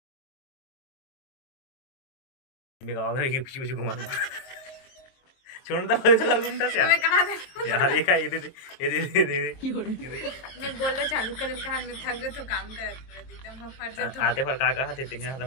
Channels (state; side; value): late; right; 22 ms